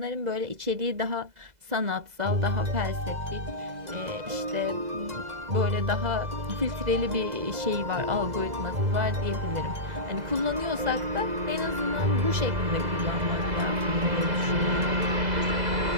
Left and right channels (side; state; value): left; late; 2.0 ms